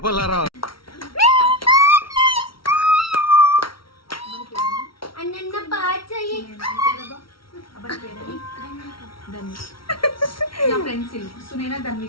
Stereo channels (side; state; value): right; late; 0.74 ms